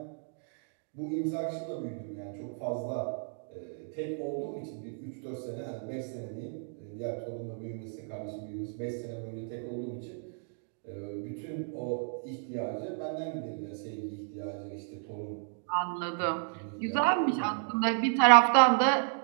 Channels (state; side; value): silent; left; 56 dB below the other